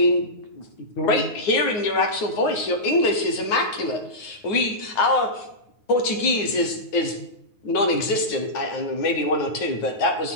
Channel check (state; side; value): late; right; 9.5 ms